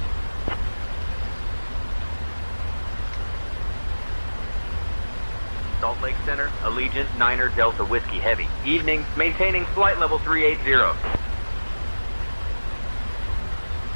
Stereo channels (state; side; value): inverted; both; correlation -1.00